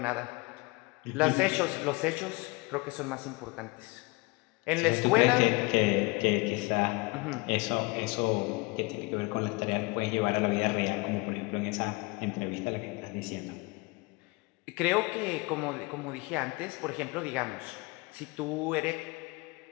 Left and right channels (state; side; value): quieter; right; 25.4 dB